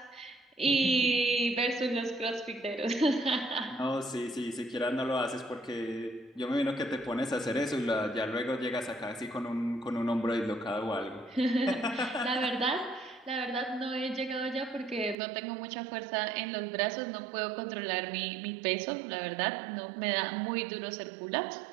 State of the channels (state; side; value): drops out; left; at 15.2 s